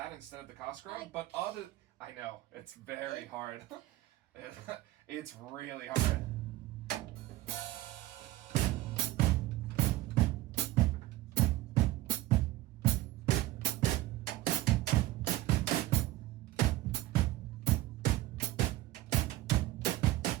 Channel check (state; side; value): quieter; left; 17.2 dB